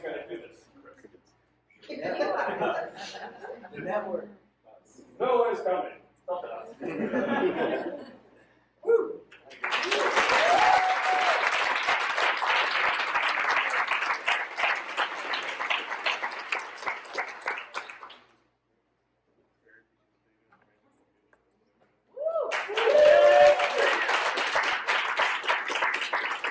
going to do this? The network. No one is coming. Stop it. Woo!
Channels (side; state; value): both; identical; correlation 1.00